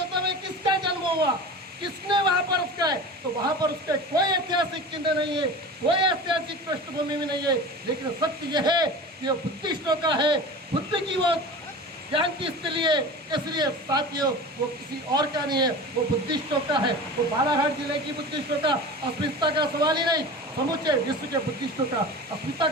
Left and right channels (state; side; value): normal; both; correlation 0.34